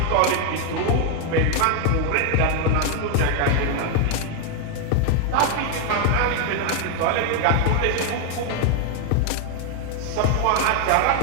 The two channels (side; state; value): both; different; correlation 0.01